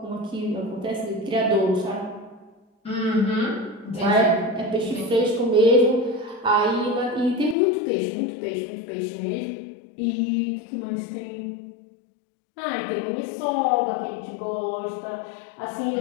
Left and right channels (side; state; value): right; drops out; at 7.6 s